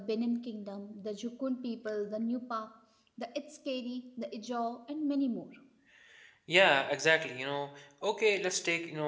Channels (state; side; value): identical; both; correlation 1.00